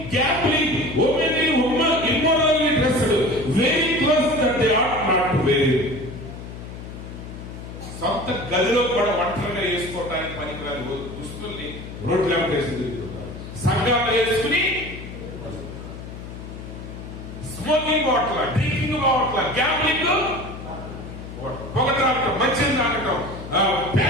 gambling, immorally dressed, very close that they are not very. సొంత గదిలో కూడా ఒంటరిగా వేసుకోవడానికి పనికిరాని దుస్తుల్ని రోడ్ల వేసి తిరుగుతున్నారు. సంఘాలు వేసుకుని smoking bottle, drinking bottle, gambling, పొగటాడటం, మద్యం తాగటం,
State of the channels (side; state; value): left; noise; hum, 11 dB below the sound